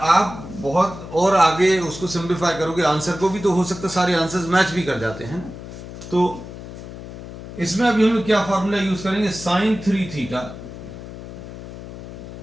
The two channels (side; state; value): left; noise; hum, 13 dB below the sound